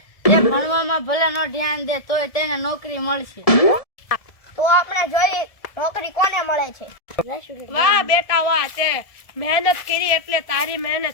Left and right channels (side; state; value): right; late; 1.7 ms